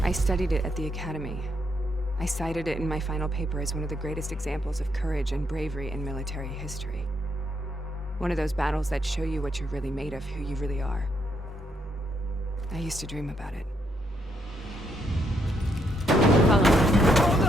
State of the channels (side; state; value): both; normal; correlation 0.76